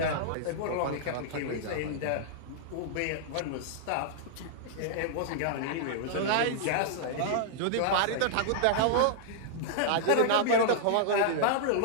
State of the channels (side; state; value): both; different; correlation -0.01